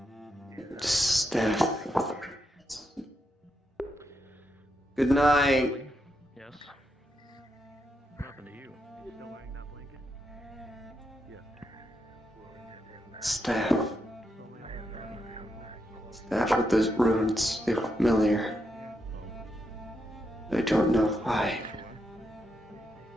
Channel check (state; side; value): normal; both; correlation 0.82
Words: Staff. Good night. Yes. What happened to you? Staff. Staff with those runes. They're familiar. I don't know why.